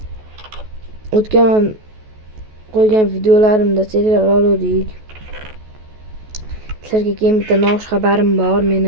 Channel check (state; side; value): late; left; 14 ms